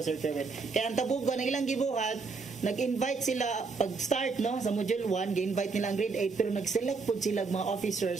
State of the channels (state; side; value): quieter; left; 4.5 dB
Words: Sir Kerwin. Kaya ang Tabugon ang ilang gibuhat nag-invite sila pag-start no sa module 1, gi-invite nila ang grade 8 pero nag-select pod sila mga